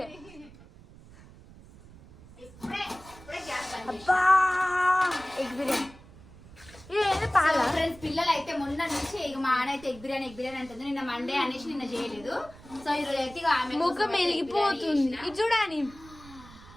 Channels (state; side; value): noise; right; rumble, 21 dB below the sound